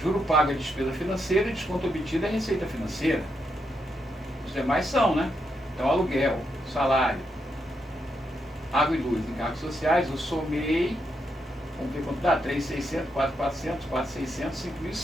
Juro pago é despesa financeira e desconto obtido é receita financeira. Os demais são, né? Então, aluguel, salário, água e luz, encargos sociais, eu somei, vamos ver quanto dá, 3.600, 4.400, 4.600,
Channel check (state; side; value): normal; both; correlation 0.82